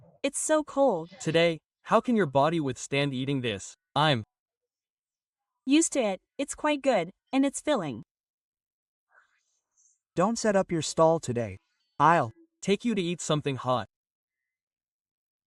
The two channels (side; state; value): both; identical; correlation 1.00